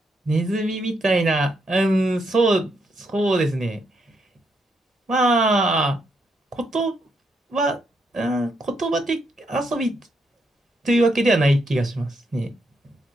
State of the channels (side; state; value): both; normal; correlation 0.78